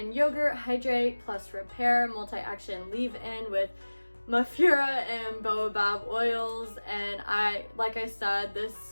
yogurt, hydrate plus repair, multi-action leave-in with Mafero and baobab oils, and like I said,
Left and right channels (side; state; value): both; inverted; correlation -1.00